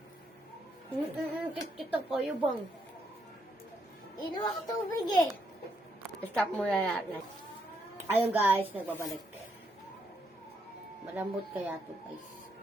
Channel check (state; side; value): normal; both; correlation 0.76